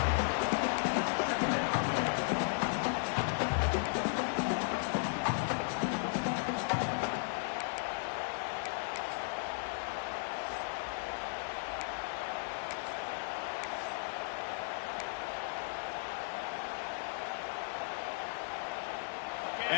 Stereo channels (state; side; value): silent; right; digital silence